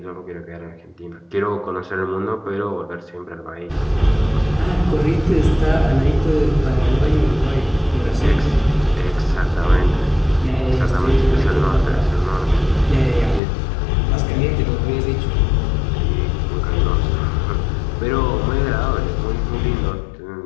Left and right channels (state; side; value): drops out; right; at 13.4 s